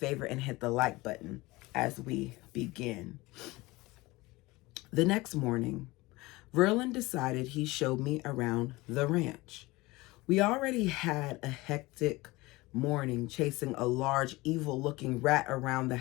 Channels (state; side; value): quieter; right; 21.2 dB